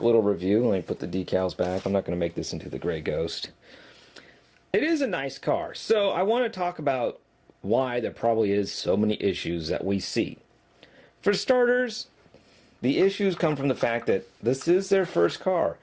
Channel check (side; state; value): both; identical; correlation 1.00